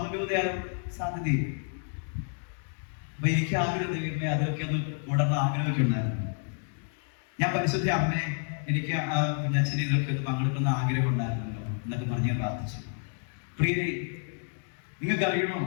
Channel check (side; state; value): right; silent; 58 dB below the other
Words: രൂപതയാണ് സാധ്യതയും. അപ്പൊ എനിക്ക് ആഗ്രഹം ദൈവമേ അതൊക്കെ ഒന്ന് കൂടണം ആഗ്രഹമൊക്കെ ഉണ്ടായിരുന്നു. ഞാൻ പരിശുദ്ധ അമ്മേ, എനിക്ക് കുഞ്ഞച്ഛനെ ഇതൊക്കെ ഒന്ന് പങ്കെടുക്കുന്ന ആഗ്രഹം ഉണ്ടായിരുന്നല്ലോ എന്നൊക്കെ പറഞ്ഞ് ഞാൻ പ്രാർത്ഥിച്ചു. പ്രിയരെ, നിങ്ങൾക്ക് അറിയണോ,